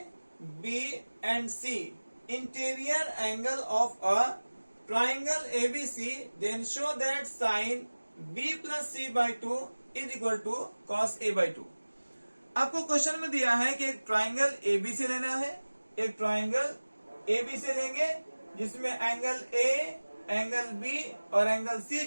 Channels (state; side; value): inverted; both; correlation -1.00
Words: B and C interior angle of a triangle ABC, then show that sin B plus C by 2 is equal to cos A by 2। आपको question में दिया है कि एक ट्राइंगल ABC लेना है, एक ट्राइंगल ABC लेंगे जिसमें एंगल A, एंगल B और एंगल C